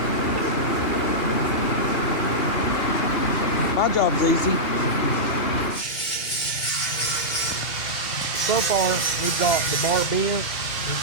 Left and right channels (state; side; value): late; right; 2.7 ms